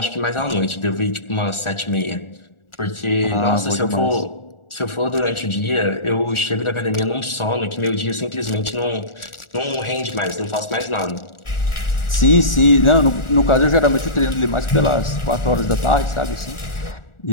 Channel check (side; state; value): right; late; 1.4 ms